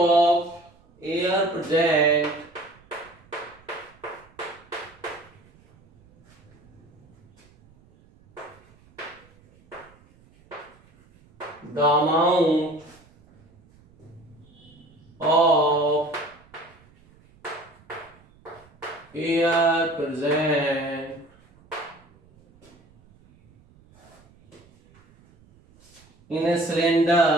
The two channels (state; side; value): noise; right; rumble, 29 dB below the sound